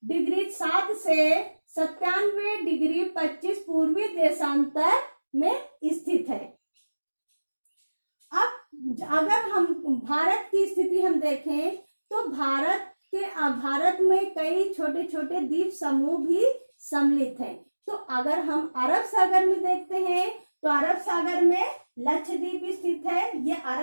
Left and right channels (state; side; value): inverted; both; correlation -1.00